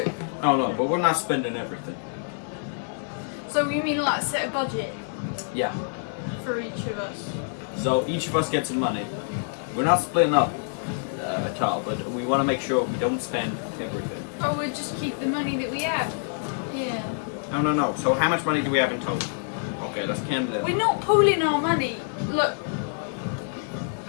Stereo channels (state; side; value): silent; right; digital silence